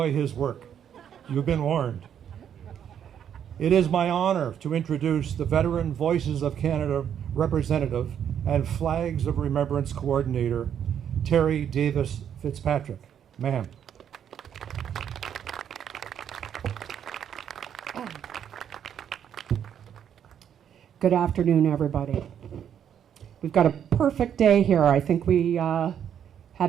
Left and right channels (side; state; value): left; quieter; 9.0 dB